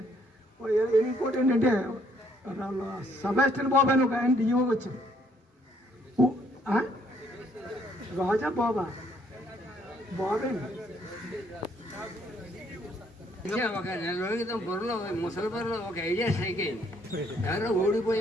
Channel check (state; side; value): normal; both; correlation 0.66